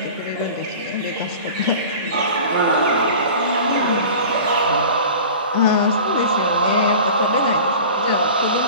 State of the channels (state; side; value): inverted; both; correlation -0.39